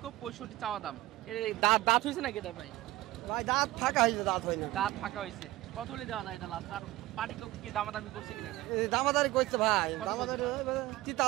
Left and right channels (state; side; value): quieter; left; 17.3 dB